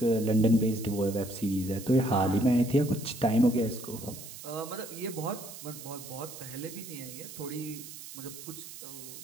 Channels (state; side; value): noise; right; hiss, 13 dB below the sound